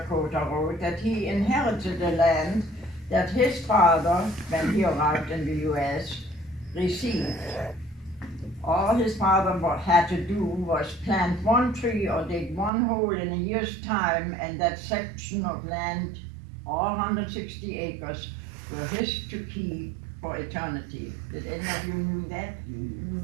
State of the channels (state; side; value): drops out; left; at 12.7 s